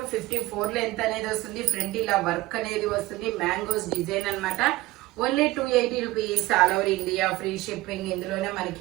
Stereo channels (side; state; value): left; quieter; 18.7 dB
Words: 54 లెంత్ అనేది వస్తుంది. ఫ్రంట్ ఇలా వర్క్ అనేది వస్తుంది. మ్యాంగోస్ డిజైన్ అన్నమాట. Only 280 rupees all over India, free shipping. ఇందులోనే